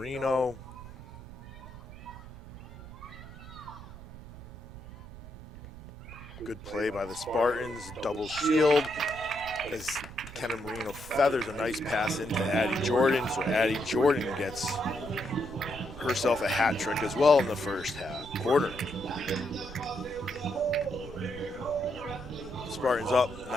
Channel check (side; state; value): right; noise; rumble, 15 dB below the sound